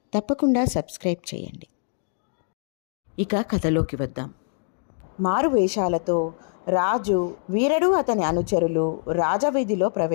తప్పకుండా సబ్స్క్రైబ్ చేయండి. ఇక కథలోకి వద్దాం. మారు వేషాలతో రాజు, వీరడు అతని అనుచరులు రాజవీధిలో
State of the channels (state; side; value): silent; right; digital silence